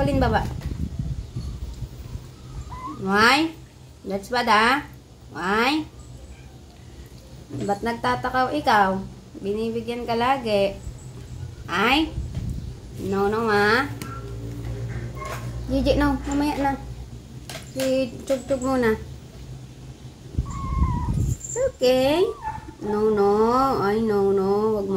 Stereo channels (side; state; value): both; identical; correlation 1.00